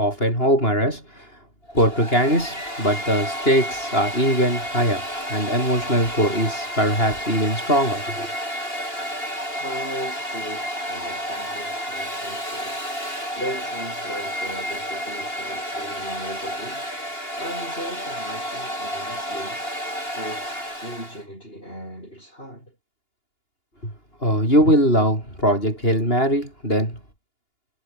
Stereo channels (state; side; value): late; right; 2.8 ms